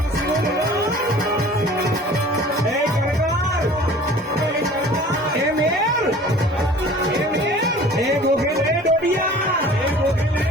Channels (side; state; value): both; normal; correlation 0.46